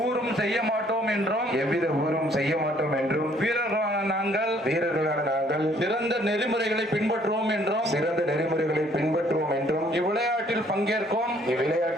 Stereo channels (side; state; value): both; normal; correlation 0.62